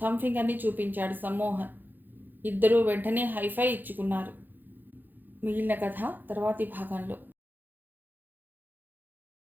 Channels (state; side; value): late; left; 0.088 ms